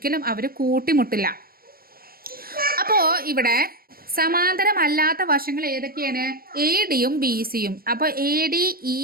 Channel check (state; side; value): late; left; 0.43 ms